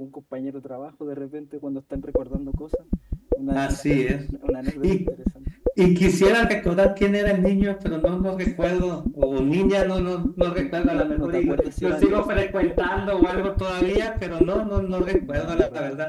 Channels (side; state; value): both; identical; correlation 1.00